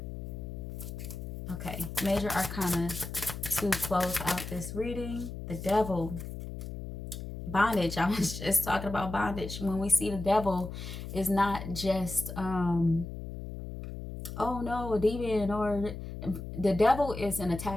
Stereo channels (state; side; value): noise; left; hum, 8 dB below the sound